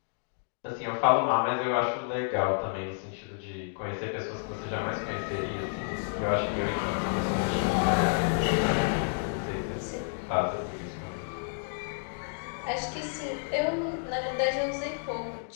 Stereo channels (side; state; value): right; silent; digital silence